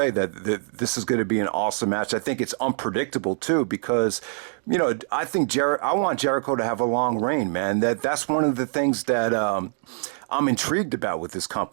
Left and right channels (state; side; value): silent; left; digital silence